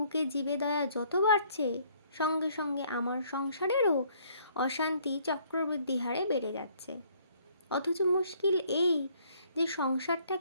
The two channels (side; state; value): both; inverted; correlation -0.63